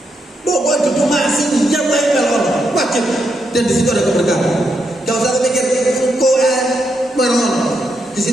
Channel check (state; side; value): normal; both; correlation 0.81